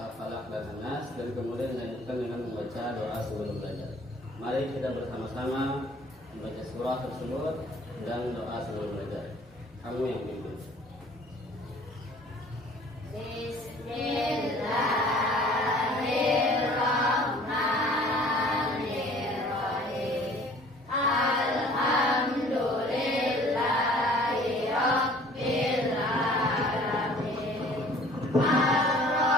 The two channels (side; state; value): both; normal; correlation 0.52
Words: dan An-Nas, dan kemudian dilanjutkan dengan membaca doa sebelum belajar. Mari kita bersama-sama membaca surah tersebut dan doa sebelum belajar. Kamu yang pimpin. Bismillahirrahmanirrahim. Alhamdulillahi rabbil alamin.